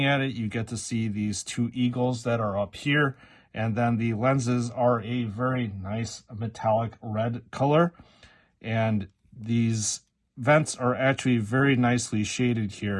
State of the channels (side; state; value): both; identical; correlation 1.00